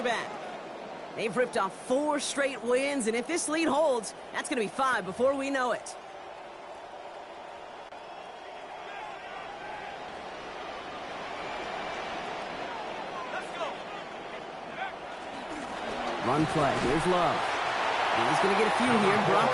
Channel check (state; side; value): identical; both; correlation 1.00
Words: They've ripped off 4 straight wins, and if this lead holds, that's going to be 5 before we know it. Run play. Here's Love. He's going to get a few here, brought